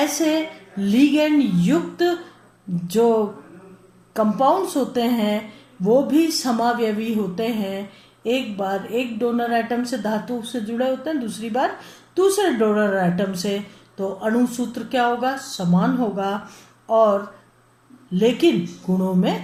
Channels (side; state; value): both; identical; correlation 1.00